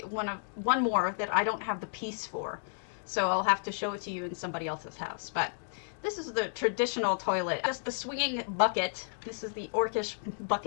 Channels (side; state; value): right; silent; digital silence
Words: one more that I don't have the piece for. So I'll have to show it to you in somebody else's house. But this is the traditional toilet. Just the swinging bucket. This is the Orcish